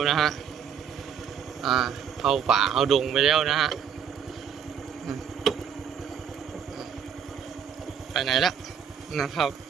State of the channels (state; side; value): quieter; left; 7.8 dB